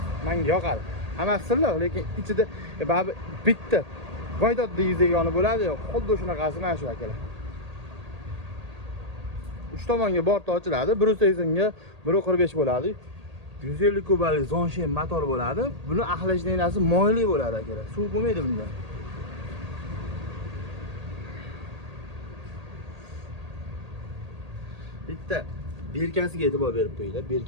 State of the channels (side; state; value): left; late; 1.8 ms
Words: Menga yoqadi. Hammasi silliq, lekin ichida baribir bitta voydod degizagoni bo'ladi-yu, xuddi shunaqasi mana shu akalar. 3 tomonga borti ochiladi, 180 ga 145 bo'ladi. 150 kubalik Zonshen motor bo'ladi. Buni axlashlanasi moyli bo'ladi akalar. Suv bo'lmaydi bunda. Bitta berkasiga e'tibor berib qo'yinglar,